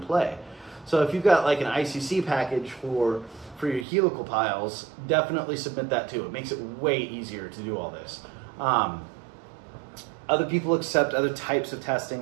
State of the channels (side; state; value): left; drops out; at 3.9 s